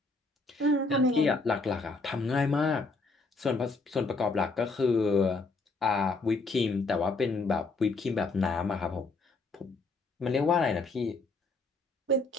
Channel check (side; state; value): right; quieter; 3.5 dB